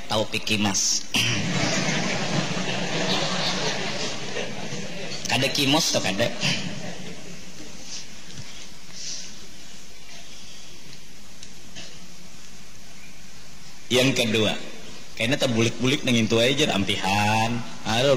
taufik kimas. Kada kimos atau kada. Yang kedua, kayaknya terbulik-bulik nengin tua aja ampihan. Aduh,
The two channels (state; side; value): identical; both; correlation 1.00